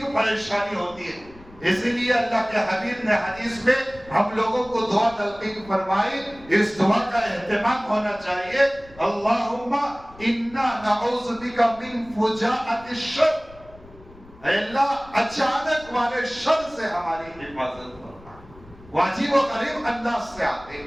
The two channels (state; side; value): noise; left; rumble, 22 dB below the sound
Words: پریشانی ہوتی ہے۔ اسی لیے اللہ کے حبیب نے حدیث میں ہم لوگوں کو دعا تلقین فرمائی، اس دعا کا اہتمام ہونا چاہیے، اللہم انا نعوذ بک من فجاءۃ الشر، اے اللہ اچانک والے شر سے ہماری حفاظت فرما۔ واجب و غریب انداز سے آتے،